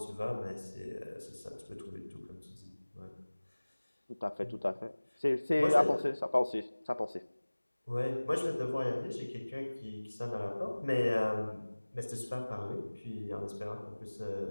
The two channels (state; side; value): inverted; both; correlation -1.00